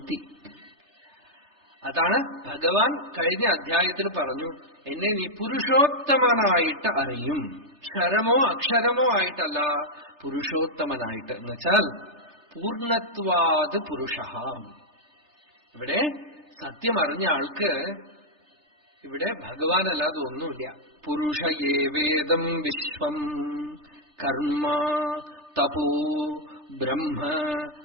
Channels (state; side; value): late; left; 3.3 ms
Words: അതാണ് ഭഗവാൻ കഴിഞ്ഞ അധ്യായത്തിൽ പറഞ്ഞു, എന്നെ നീ പുരുഷോത്തമനായിട്ട് അറിയും. ക്ഷരമോ അക്ഷരമോ ആയിട്ടല്ല, പുരുഷോത്തമനായിട്ട്. എന്നുവെച്ചാൽ പൂർണ്ണത്വാത് പുരുഷ. ഇവിടെ സത്യം അറിഞ്ഞ ആൾക്ക് ഇവിടെ ഭഗവാനല്ലാതെ ഒന്നുമില്ല. പുരുഷ ഏവേദം വിശ്വം കർമ്മ തപോ ബ്രഹ്മ